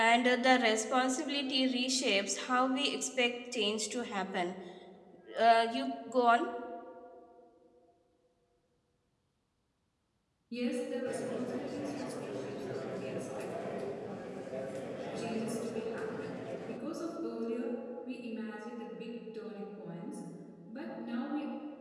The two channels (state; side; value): identical; both; correlation 1.00